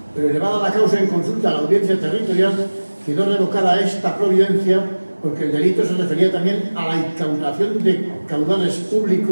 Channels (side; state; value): both; inverted; correlation -1.00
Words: pero elevada la causa en consulta a la audiencia territorial, quedó revocada esta providencia porque el delito se refería también a la incautación de caudales